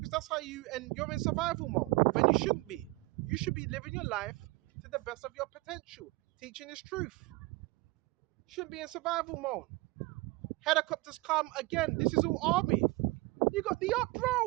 that's how and you're in survival mode when you shouldn't be. You should be living your life to the best of your potential, teaching this truth. Shouldn't be in survival mode. Helicopters come again. This is all army. You got the up,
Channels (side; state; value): left; quieter; 22.9 dB